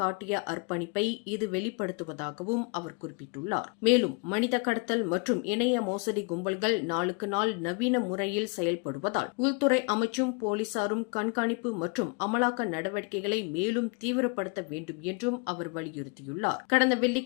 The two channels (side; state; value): right; quieter; 32.1 dB